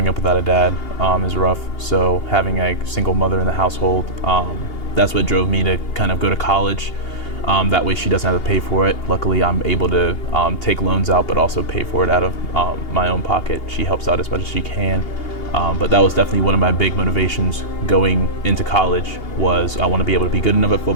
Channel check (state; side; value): late; right; 2.8 ms